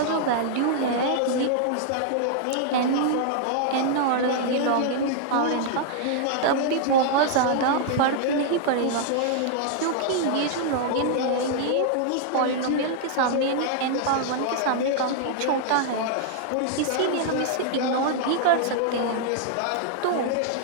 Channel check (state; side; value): different; both; correlation -0.01